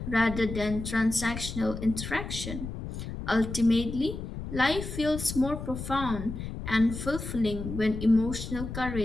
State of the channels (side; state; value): left; noise; rumble, 7 dB below the sound